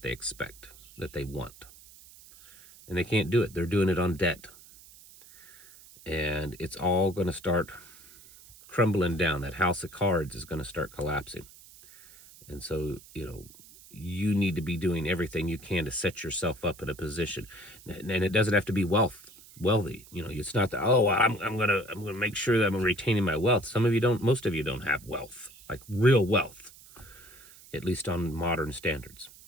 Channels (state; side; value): noise; right; hiss, 21 dB below the sound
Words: they expect, that they want. And they can't do it. They're doing it on debt. and it's all going to start crumbling down. That house of cards is going to start collapsing. And so, you need to be doing everything you can to set yourself up in a position. And it doesn't have to be wealthy. It's not that, oh, I'm gonna make sure that I'm retaining my wealth. Most of you don't have wealth, like real wealth, at least on modern standards.